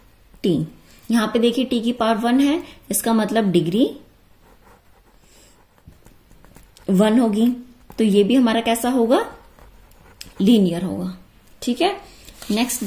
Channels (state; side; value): identical; both; correlation 1.00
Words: यहां पे देखिए t की पावर 1 है, इसका मतलब डिग्री 1 होगी, तो ये भी हमारा कैसा होगा, लीनियर होगा। ठीक है, नेक्स्ट